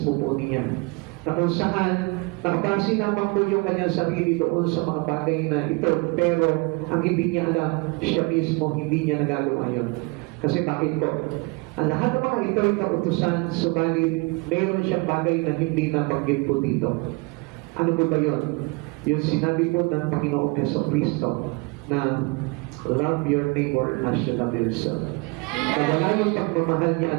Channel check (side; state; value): left; quieter; 27.6 dB